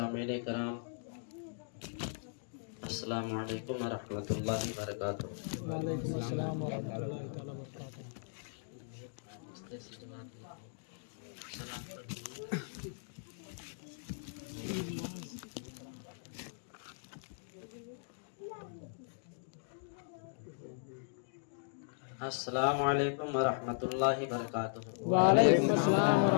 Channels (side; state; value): right; silent; digital silence